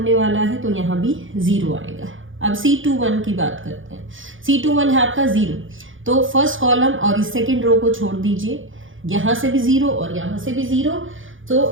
वाला है, तो यहाँ भी 0 आएगा. अब C21 की बात करते हैं. C21 है आपका 0, तो फर्स्ट कॉलम और इस सेकेंड रो को छोड़ दीजिए, यहाँ से भी 0 और यहाँ से भी 0,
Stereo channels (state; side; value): late; left; 0.57 ms